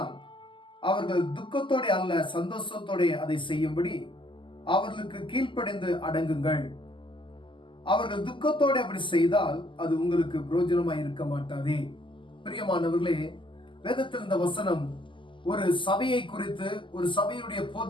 அவர்கள் துக்கத்தோட அல்ல சந்தோஷத்தோட அதை செய்யும்படி அவர்களுக்கு கீழ்ப்படிந்து அடங்குங்கள். அவர்கள் துக்கத்தோட அப்படி செய்தால் அது உங்களுக்கு பிரயோஜனமாய் இருக்க மாட்டாதே. பிரியமானவர்களே, வேதத்தில் இந்த வசனம் ஒரு சபையை குறித்து, ஒரு சபையுடைய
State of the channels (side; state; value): right; late; 0.25 ms